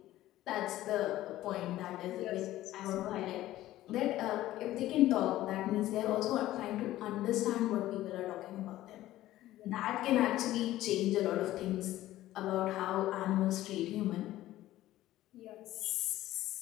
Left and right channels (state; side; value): quieter; right; 15.0 dB